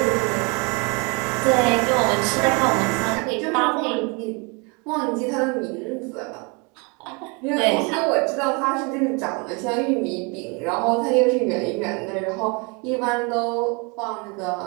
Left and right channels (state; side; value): quieter; left; 31.2 dB